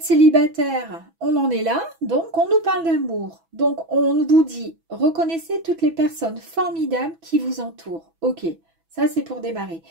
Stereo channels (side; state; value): left; late; 6.1 ms